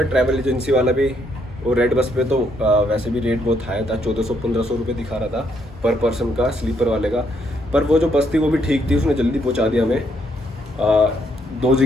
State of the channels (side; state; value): both; normal; correlation 0.73